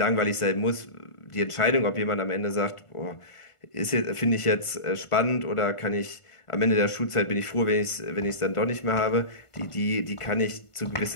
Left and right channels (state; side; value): late; right; 1.5 ms